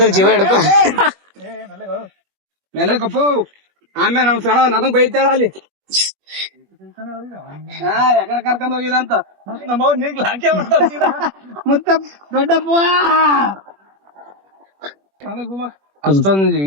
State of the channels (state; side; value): late; left; 21 ms